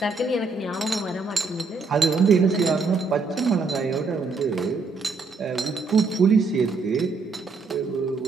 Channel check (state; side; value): quieter; left; 4.2 dB